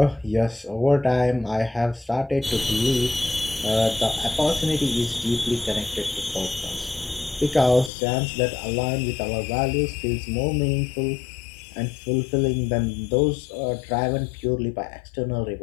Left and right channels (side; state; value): right; drops out; at 7.9 s